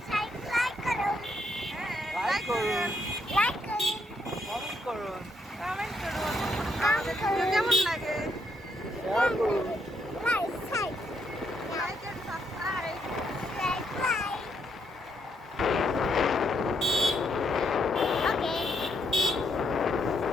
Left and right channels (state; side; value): normal; both; correlation 0.75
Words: করুন, লাইক করুন, কমেন্ট করুন, আমাদের ভিডিও কেমন লাগে শেয়ার করুন। Like and subscribe.